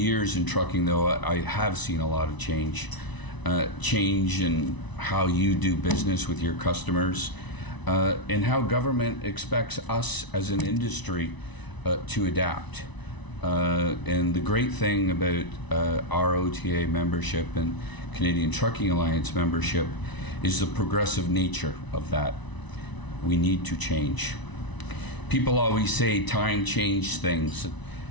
in trucking, though, I have seen a lot of change in how you do business with your customers, and how government expects us as an industry to adapt. And the great thing about our OTA membership and Canadian Trucking Alliance membership is the progressive nature of that. We need to change. People always say time changes things,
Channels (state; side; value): late; right; 1.0 ms